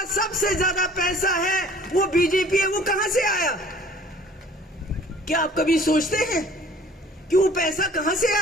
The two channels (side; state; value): both; normal; correlation 0.51